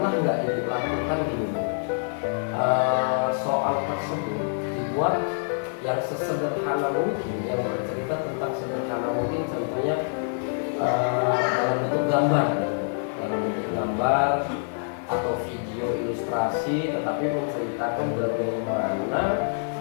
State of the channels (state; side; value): silent; right; 59 dB below the other